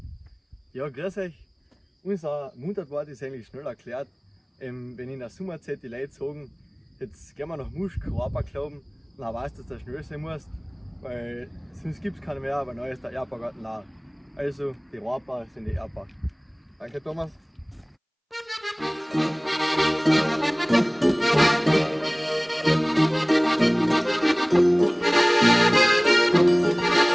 Ja, grüß euch. Unser Mundartwort ist eigentlich schnell erklärt. Wenn in der Sommerzeit die Leute sagen, jetzt gehen wir nach Muschk, Rohrbau glauben, dann weißt du, dass du schnell sein musst, weil sonst gibt es keine mehr, aber neu ist der Erdbaugarten leer. Also die Rohrbau sind die Erdbau. Danke Thomas.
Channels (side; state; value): both; identical; correlation 1.00